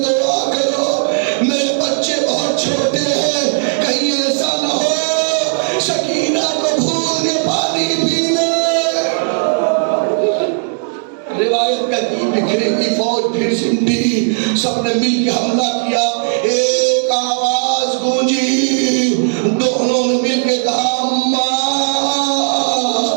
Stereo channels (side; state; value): left; silent; digital silence